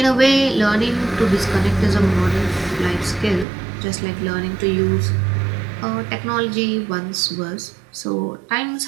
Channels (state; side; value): drops out; left; at 3.5 s